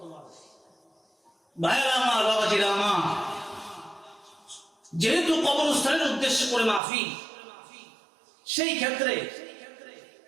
ভাইরা আমার, বাবাজিরা আমার, যেহেতু কবরস্থানের উদ্দেশ্য করে মাহফিল, সেই ক্ষেত্রে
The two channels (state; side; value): drops out; left; at 6.8 s